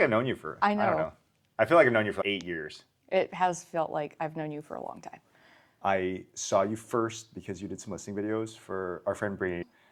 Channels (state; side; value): identical; both; correlation 1.00